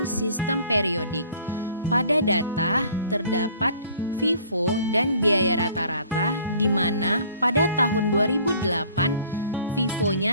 sistem periodik. Pada data terdapat FIFO dan biaya rata-rata, di mana pada tahun 2008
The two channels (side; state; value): both; inverted; correlation -0.54